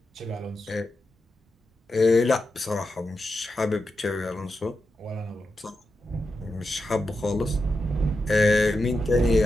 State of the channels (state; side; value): normal; both; correlation 0.88